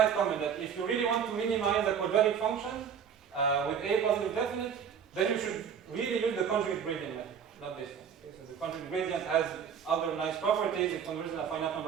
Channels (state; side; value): quieter; left; 7.5 dB